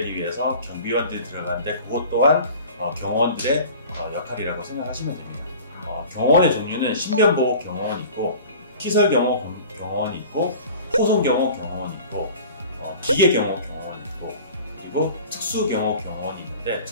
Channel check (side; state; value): both; inverted; correlation -0.42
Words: 위해서 경비원들이 들어가는데 그것 또한 경호원들의 역할이라고 생각하시면 됩니다. 경호원의 종류는 신변보호 경호원이 있고 시설경호 경호원이 있고 호송경호 경호원이 있고 기계경호 경호원이 있고 그리고 특수경호 경호원이 있는데